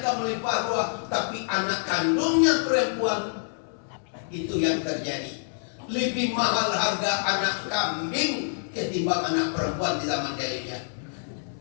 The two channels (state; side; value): silent; right; 60 dB below the other